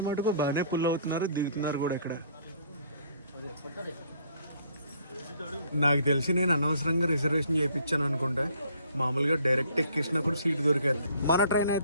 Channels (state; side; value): inverted; both; correlation -0.60